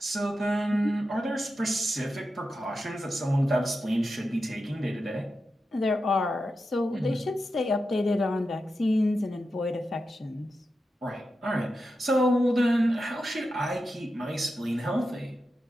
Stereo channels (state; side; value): normal; both; correlation 0.90